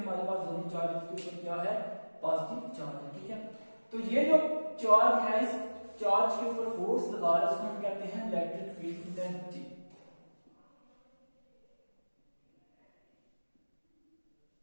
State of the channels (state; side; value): inverted; both; correlation -1.00